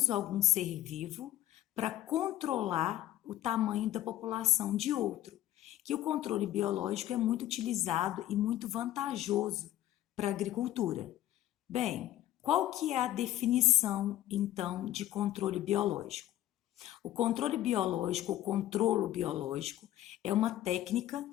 algum ser vivo para controlar o tamanho da população de outro. Que o controle biológico é muito utilizado e muito vantajoso para a agricultura. Bem, qual que é a definição, então, de controle biológico? O controle biológico, o controlo biológico, é uma técnica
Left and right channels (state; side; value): quieter; right; 13.7 dB